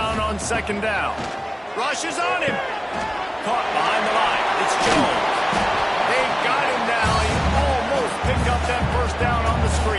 on second down. Rushes on him. Caught behind the line. It's Jones. They got him now. He almost picked up that first down on the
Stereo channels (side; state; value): both; identical; correlation 1.00